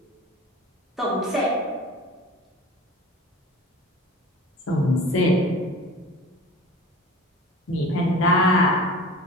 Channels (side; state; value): both; normal; correlation 0.39